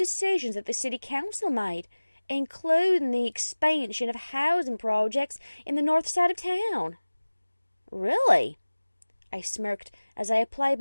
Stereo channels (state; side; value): inverted; both; correlation -1.00